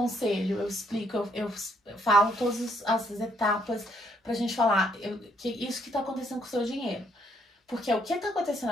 eu explico, eu falo todas as etapas pra gente falar que isso que tá acontecendo com o seu dinheiro. Porque o que tá acontecendo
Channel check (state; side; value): normal; both; correlation 0.69